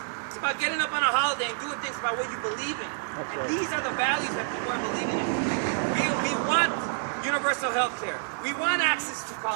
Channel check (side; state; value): left; silent; digital silence